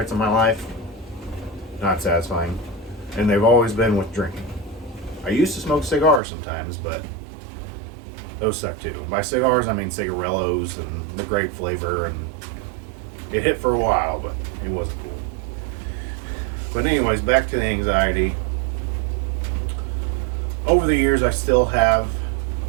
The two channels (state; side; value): drops out; left; at 6.2 s